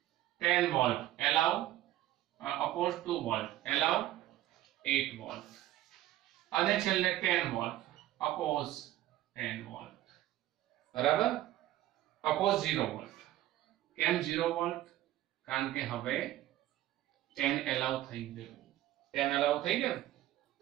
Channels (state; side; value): quieter; left; 14.5 dB